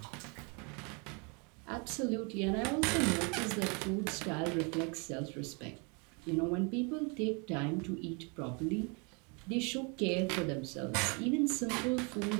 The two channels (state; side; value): quieter; left; 33.3 dB